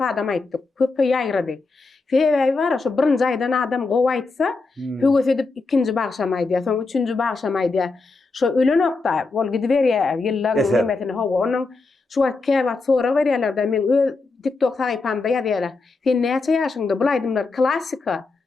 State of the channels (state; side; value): quieter; right; 3.8 dB